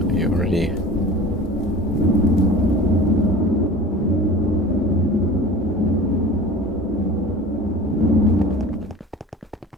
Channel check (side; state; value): both; normal; correlation 0.39